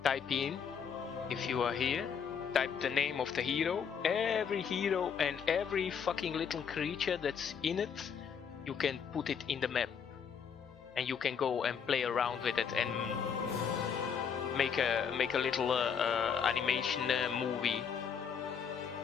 type in, if you are here, type the name of the hero. Every hero and every fucking little creature that's in it, you can put it in the map. And you can go and play around with it and make a little animation movie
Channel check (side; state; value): right; quieter; 7.0 dB